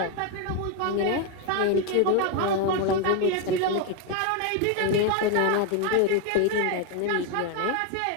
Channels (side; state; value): both; different; correlation 0.02